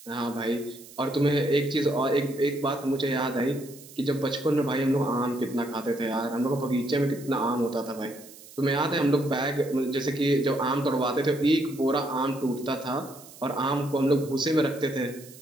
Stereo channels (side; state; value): right; noise; hiss, 19 dB below the sound